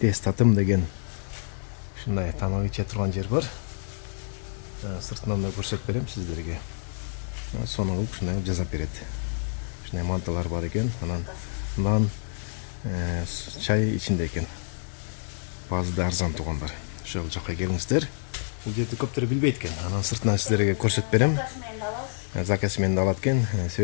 татым деген шындай тамақ іше тұрған жер бар. Сыртынан да көрсетіп берем сіздерге. Соның қылып шындай жазап береді. Шындай манталар бар екен, анан нан, чай içinde екен. Bazı da арзан туғандар. Шол жаққа келіңіздер. Бұл жерді көптері білбейді екен. Анан сыртынан сіздерге көрсетіп берем. Закасымен де алады екен.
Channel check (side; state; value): right; silent; 60 dB below the other